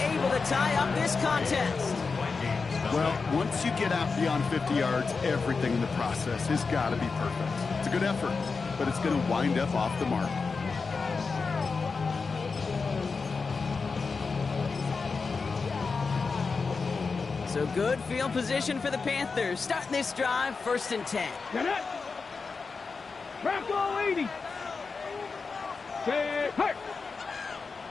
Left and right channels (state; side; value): quieter; right; 4.7 dB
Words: to tie up this contest. Well, once you get out beyond 50 yards, everything in the process has got to be perfect. It's a good effort, but it's going to wind up off the mark. So good field position for the Panthers. Starting this drive, 1st and 10. Get it. Crack all 80. Say, hey.